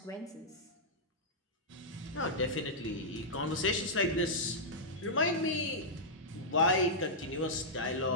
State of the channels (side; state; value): both; normal; correlation -0.09